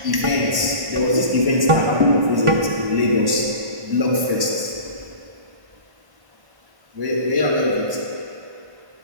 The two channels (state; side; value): late; left; 1.1 ms